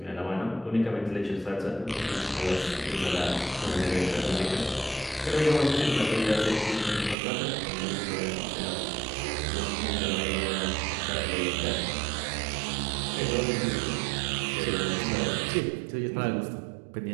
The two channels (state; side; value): drops out; left; at 7.2 s